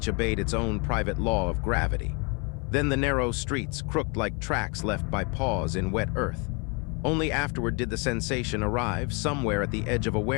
obeyed its own private law of gravity. Then the narrow streets, crooked like tracks left by paws in wet earth. Only afterward did the sensation arrive, somewhere at the edge of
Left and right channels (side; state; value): right; quieter; 32.7 dB